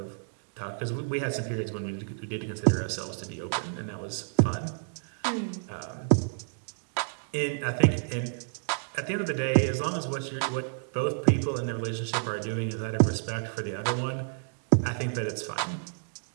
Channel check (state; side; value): silent; left; digital silence